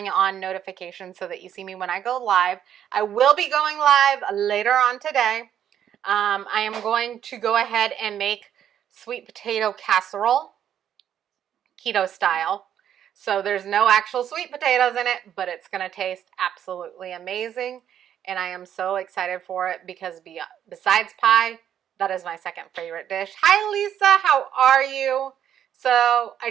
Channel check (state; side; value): quieter; left; 9.8 dB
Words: on notifications so that you see me when I go live. I will be going live later on today. I am going to go ahead and make sweet potato casserole, keto style. So there's no actual sweet potatoes in it, but it's going to taste absolutely amazing. And I am so excited for it because besides pie, that is my second favorite dish. Hi, Lisa. How are you? So I